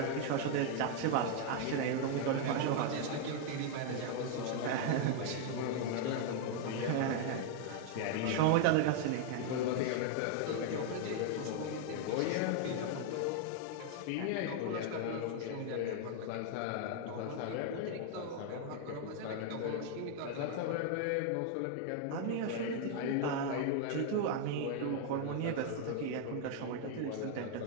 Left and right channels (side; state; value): both; different; correlation 0.00